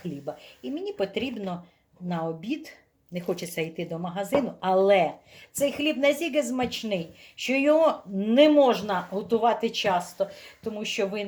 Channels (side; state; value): both; identical; correlation 1.00